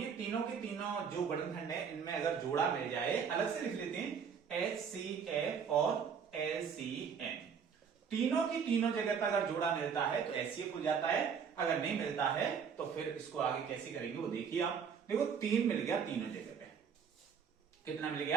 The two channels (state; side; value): quieter; left; 6.8 dB